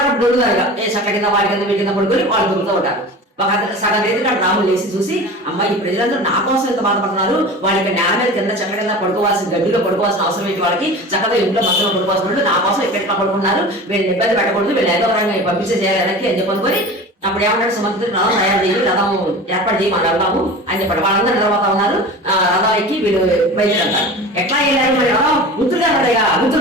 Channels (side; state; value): both; normal; correlation 0.35